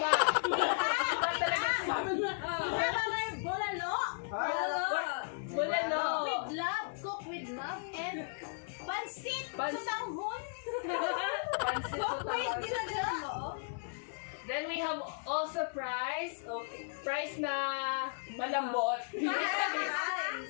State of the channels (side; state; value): right; silent; 54 dB below the other